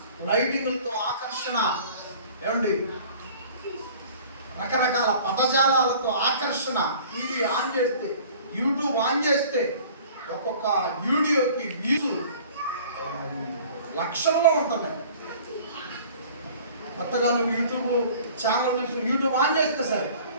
లైటింగ్లతో ఆకర్షణ, ఏమండి రకరకాల పదజాలాలతో ఆకర్షణ. టీవీ ఆన్ చేస్తే, యూట్యూబ్ ఆన్ చేస్తే ఒక్కొక్క వీడియోకి వ్యూస్ లక్షల్లో ఉంటున్నాయి. కొత్తగా నువ్వు యూట్యూబ్ ఛానల్ యూట్యూబ్ ఆన్ చేస్తే సరే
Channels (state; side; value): inverted; both; correlation -0.48